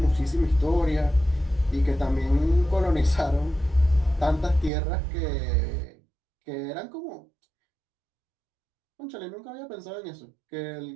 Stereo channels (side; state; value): left; drops out; at 4.7 s